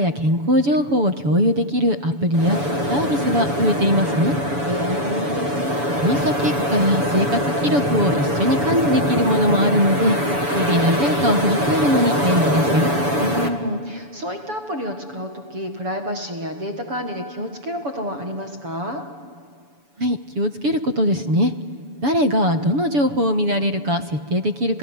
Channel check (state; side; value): late; left; 7.0 ms